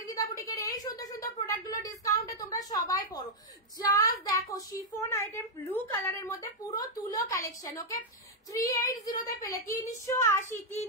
বুটিকের এই সুন্দর সুন্দর প্রোডাক্ট গুলো ডিসকাউন্টে তোমরা সবাই পড়ো। জাস্ট দেখো শিফন আইটেম ব্লু কালারের মধ্যে পুরো তুলো কালেকশন। ওকে 380 তে পেলে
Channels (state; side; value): normal; both; correlation -0.02